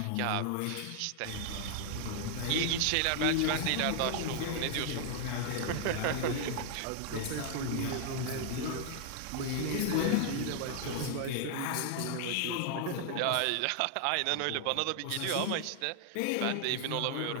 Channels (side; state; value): both; different; correlation 0.00